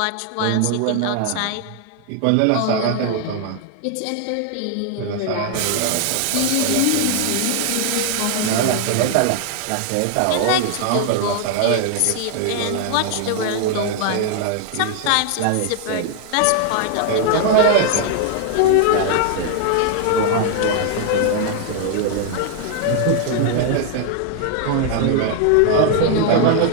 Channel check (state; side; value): different; both; correlation 0.00